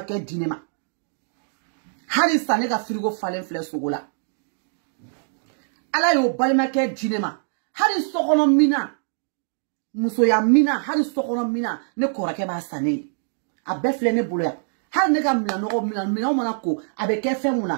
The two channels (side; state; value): left; silent; digital silence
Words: ke dinema Hari sane ka frigo falen fle sogola. Ala yo balima ke jinema. Hari sokono mina. Muso ya mina. Hari sokono mina. Ne korake ba sane. A befle ne bolo ya. Hari ne ka mina no mina mana ko. Abe ke fe